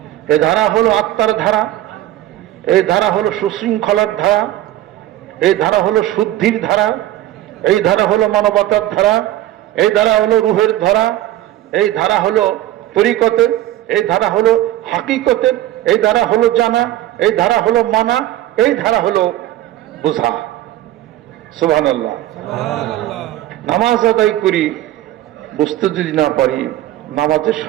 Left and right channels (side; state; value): left; quieter; 14.1 dB